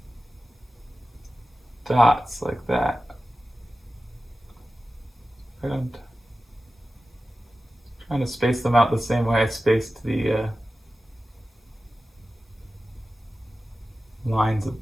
dots like that. And trying to space them out the same way I spaced the lines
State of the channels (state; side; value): normal; both; correlation 0.94